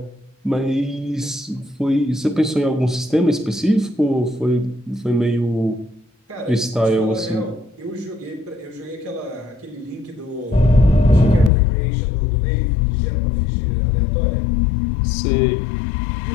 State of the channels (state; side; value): drops out; right; at 11.5 s